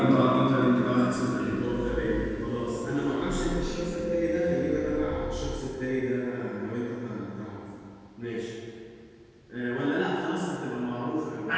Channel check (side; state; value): both; identical; correlation 1.00